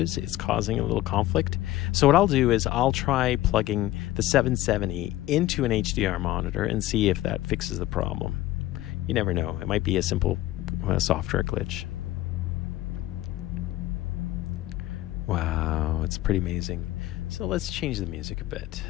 it's causing a little conflict. So what I'll do is I'll try plugging the 770 into an HDR monitor and see if that fixes the problem. You never know. It might be a simple software glitch. Wow, it's pretty amazing. So let's change the music a bit.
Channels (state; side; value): quieter; right; 15.7 dB